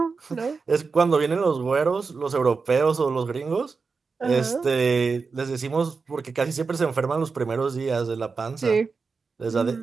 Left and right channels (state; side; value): quieter; left; 4.7 dB